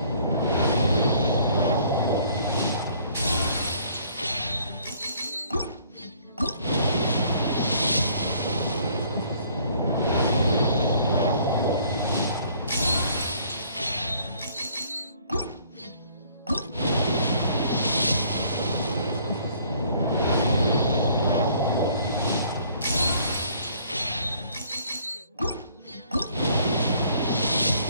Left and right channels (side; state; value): both; inverted; correlation -0.59